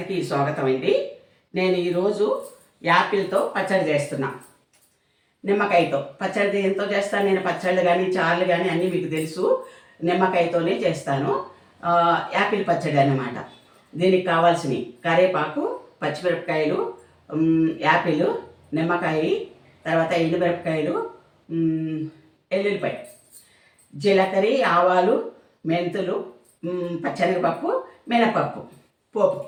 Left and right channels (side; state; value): both; identical; correlation 1.00